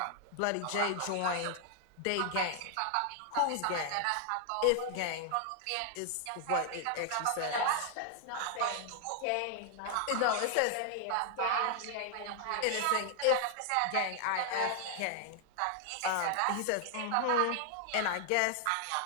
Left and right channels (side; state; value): both; different; correlation 0.00